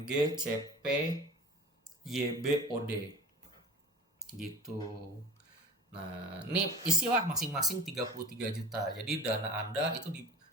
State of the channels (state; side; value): normal; both; correlation 0.38